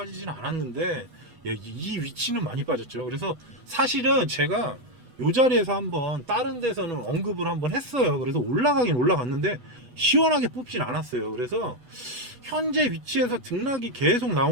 않았는데 예, 이 위치는 많이 빠졌죠. 그래서 사실은 제가 이 자리에서 한번 다른 데서는 언급을 한번 했어요. 그래서 올라가긴 올라갔는데 시원하게 뽑진 않았어요. 그래서 현재 위치에서 등락이 계속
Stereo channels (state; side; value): late; left; 8.1 ms